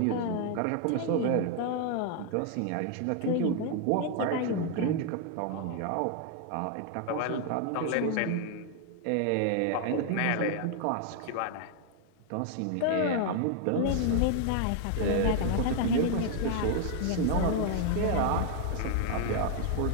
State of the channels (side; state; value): both; different; correlation 0.00